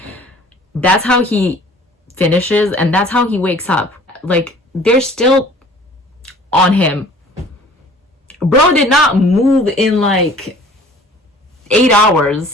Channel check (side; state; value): both; normal; correlation 0.50